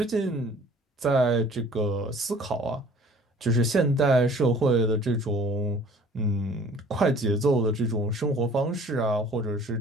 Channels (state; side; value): normal; both; correlation 0.51